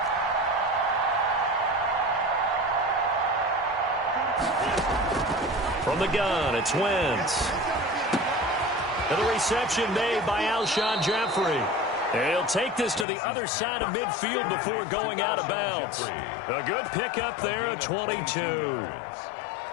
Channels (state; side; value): drops out; right; at 13.1 s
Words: From the gun, it's Wentz. And the reception made by Alshon Jeffrey. And he'll take this to the other side of midfield before going out of bounds. A good pickup there at 22.